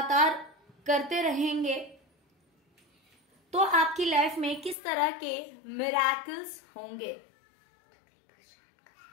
करते रहेंगे, तो आपकी लाइफ में किस तरह के मिरेकल्स होंगे।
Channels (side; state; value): right; drops out; at 4.8 s